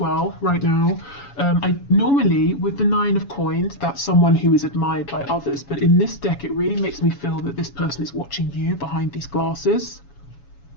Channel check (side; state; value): right; late; 7.1 ms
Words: well right now. I normally, with the Nine of Coins, that's someone who is admired by others, but in this deck it really makes me feel that this person is watching you behind these glasses.